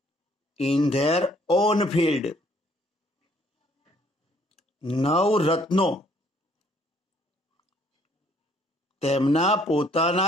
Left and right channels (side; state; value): both; normal; correlation 0.63